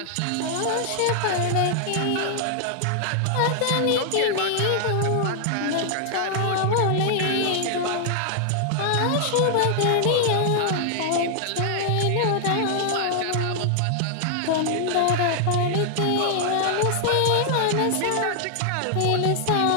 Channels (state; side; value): different; both; correlation 0.00